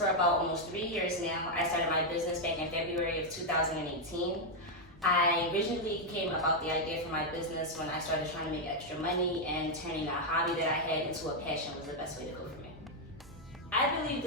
about almost 3 years now. I started my business back in February of 2018. I originally came about the idea for my business when I started trying to make extra money, and turning a hobby that I had into a passion was the best way to go for me. I believe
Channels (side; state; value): both; normal; correlation 0.00